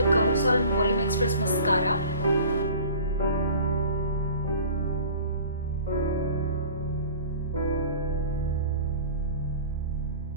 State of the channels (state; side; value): inverted; both; correlation -0.43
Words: कलोसल volume express mascara.